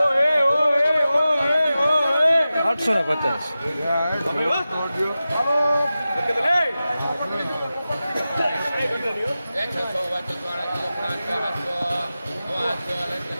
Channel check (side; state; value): both; inverted; correlation -0.94